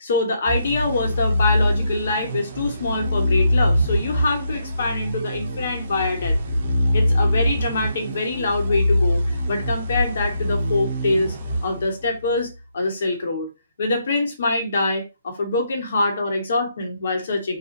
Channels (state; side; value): inverted; both; correlation -0.80